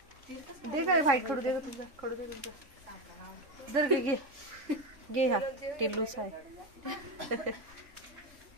दे काय व्हाईट खडू दे तुझा, खडू दे तुझा. जर घे हा टिल्लूस आहे.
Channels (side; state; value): left; late; 3.5 ms